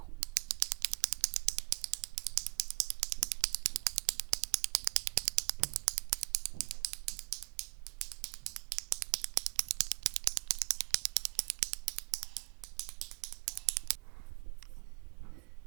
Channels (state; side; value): quieter; left; 29.4 dB